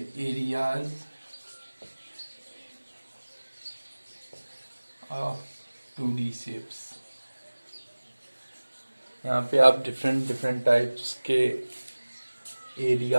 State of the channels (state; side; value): inverted; both; correlation -1.00